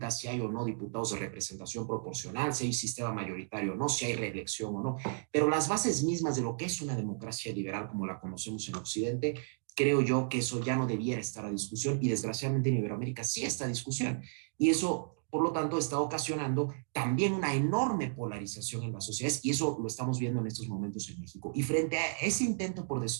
si hay o no diputados de representación proporcional, si hay sistema mayoritario o no, si hay reelección o no. Pero las bases mismas de lo que es una democracia liberal como la conocemos en Occidente, creo yo que eso ya no debiera estar a discusión, y desgraciadamente en Iberoamérica sí está a discusión. Y eso, por lo tanto, está ocasionando también una enorme polarización en las sociedades, y eso lo estamos viendo en estos momentos en México. Y frente a ese intento por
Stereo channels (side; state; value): left; silent; digital silence